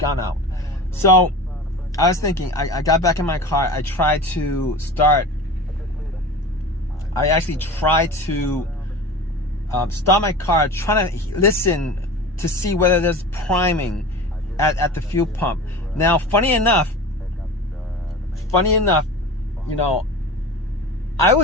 out. So I was thinking, I got back in my car. I tried to start. I actually tried to start my car, trying to listen to see whether there's priming at the fuel pump. Now, funny enough, I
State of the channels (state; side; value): normal; both; correlation 0.34